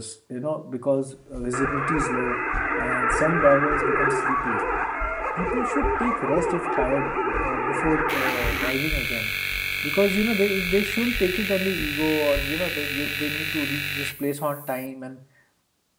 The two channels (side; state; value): both; identical; correlation 1.00